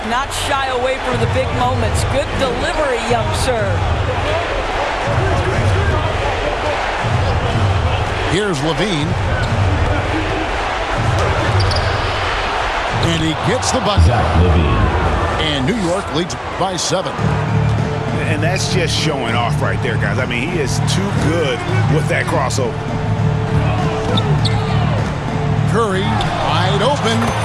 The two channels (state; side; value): identical; both; correlation 1.00